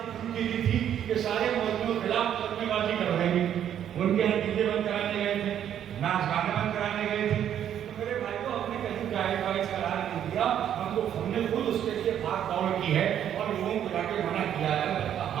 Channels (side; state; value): left; quieter; 9.9 dB